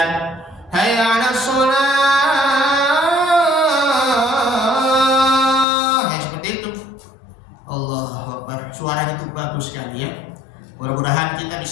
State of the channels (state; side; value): drops out; right; at 5.7 s